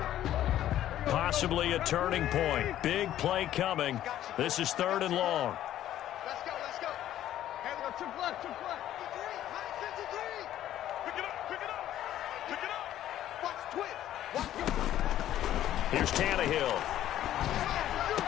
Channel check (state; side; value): quieter; right; 12.4 dB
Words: Possibly a turning point. Big play coming. This is 3rd and long. Let's go, let's go. Hey, we go triple left, triple left. 53. Pick it up, pick it up. Pick it up. Watch twist. Watch go. Here's Tannehill.